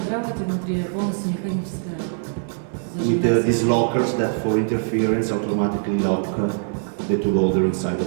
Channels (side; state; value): left; silent; digital silence